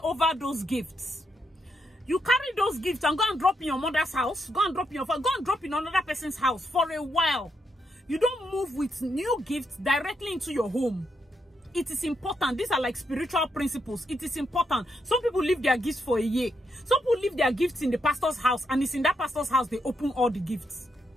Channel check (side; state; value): both; normal; correlation 0.80